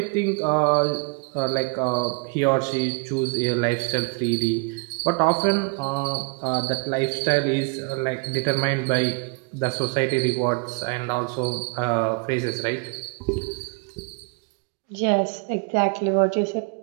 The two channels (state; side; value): quieter; left; 33.2 dB